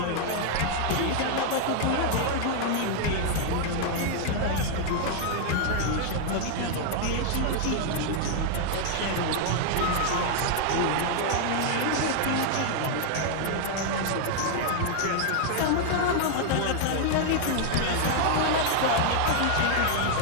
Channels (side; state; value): both; different; correlation 0.00